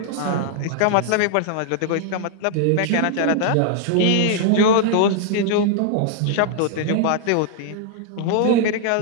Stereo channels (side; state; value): both; different; correlation -0.01